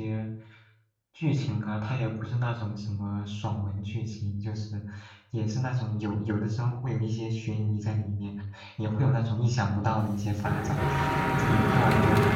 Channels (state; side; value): identical; both; correlation 1.00